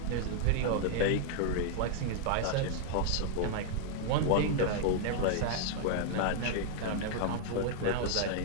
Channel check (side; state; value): both; different; correlation -0.01